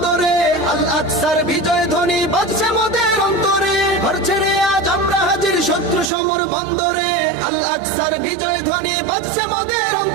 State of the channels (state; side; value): drops out; left; at 6.1 s